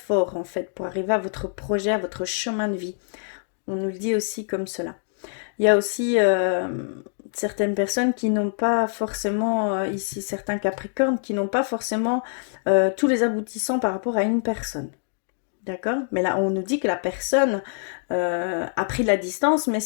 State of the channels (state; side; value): silent; right; digital silence